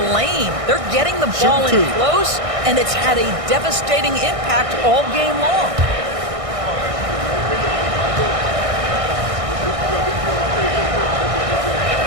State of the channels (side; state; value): left; late; 1.6 ms